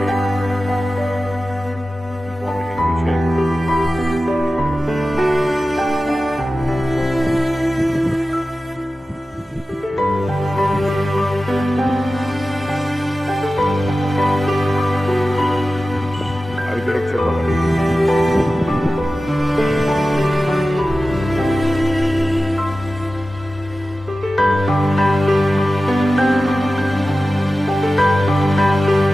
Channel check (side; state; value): both; normal; correlation 0.95